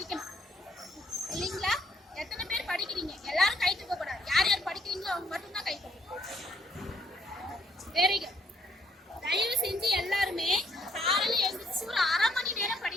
இல்லைங்களா? எத்தனை பேர் படிக்கிறீங்க? எல்லாரும் கை தூக்க கூடாது. யார் யார் படிக்கிறீங்களோ அவங்க மட்டும்தான் கை தூக்கணும். Very good. தயவு செஞ்சு எல்லாருமே காலையில எழுந்திரிச்சு ஒரு 1/2 மணி நேரம்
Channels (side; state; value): both; normal; correlation 0.69